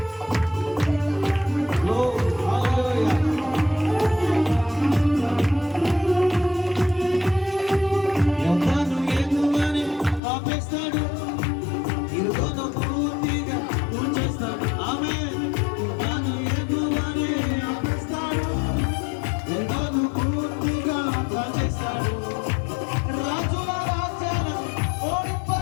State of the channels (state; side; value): drops out; right; at 10.2 s